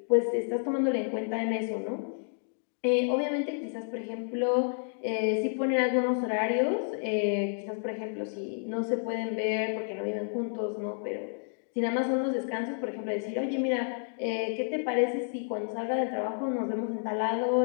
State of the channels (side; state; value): right; silent; digital silence